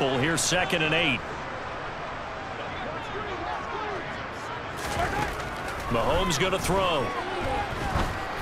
Here's 2nd and 8. Mahomes going to throw.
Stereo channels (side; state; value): both; identical; correlation 1.00